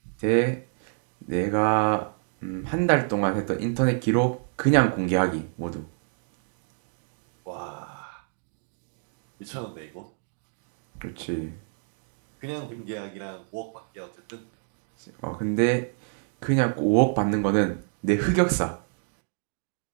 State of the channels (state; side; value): silent; left; 60 dB below the other